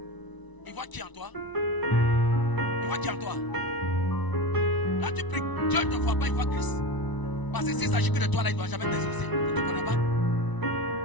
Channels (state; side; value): late; right; 1.0 ms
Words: Il voit qui en toi? Il voit qui en toi? Quand tu pries, Dieu ne te voit pas, il voit Christ. Parce que s'il s'agit que de toi, là, il ne doit jamais t'exaucer. Il ne te connaît pas.